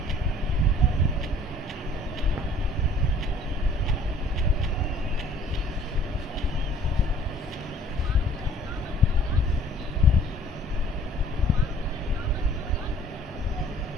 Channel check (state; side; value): normal; both; correlation 0.53